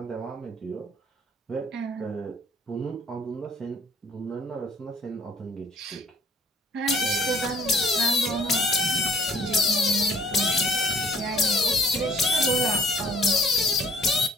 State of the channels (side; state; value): both; normal; correlation 0.58